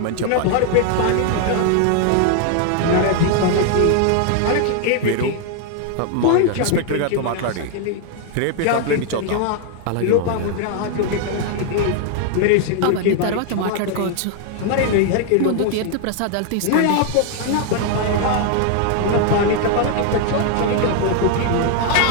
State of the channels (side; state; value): both; different; correlation 0.00